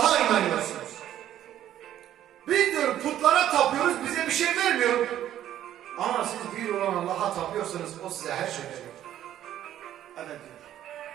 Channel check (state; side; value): quieter; left; 11.8 dB